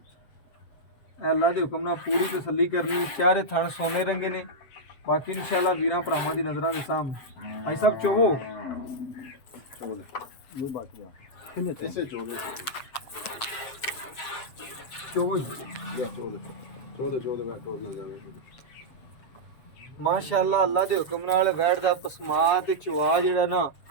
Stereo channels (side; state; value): right; late; 7.5 ms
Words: ਅੱਲਾ ਦੇ ਹੁਕਮ ਨਾਲ ਪੂਰੀ ਤਸੱਲੀ ਕਰਨੀ। ਚਾਰੇ ਥਣ ਸੋਨੇ ਰੰਗੇ ਨੇ। ਬਾਕੀ ਇਨਸ਼ਾਅੱਲਾ ਵੀਰਾਂ ਭਰਾਵਾਂ ਦੀ ਨਜ਼ਰਾਂ ਦੇ ਸਾਹਮਣੇ ਭਾਈ ਸਾਹਿਬ ਚੋਵੋ ਇਹ ਬਾਕੀ ਆ ਇਸੇ ਚੋ ਦੇ ਚੋਵੋ ਚੋ ਦੇ ਮੈਂ ਟੋਰ ਨਾ ਜਾਵੇ। ਮਾਸ਼ਾਅੱਲਾ ਅੱਲਾ ਦੇ ਹੁਕਮ ਨਾਲ ਵੈੜ ਦਾ ਪਸਮਾ ਤੇ ਚਵਾ ਜਿਹੜਾ ਨਾ